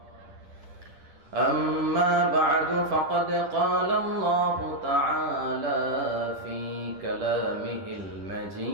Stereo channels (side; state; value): left; late; 10 ms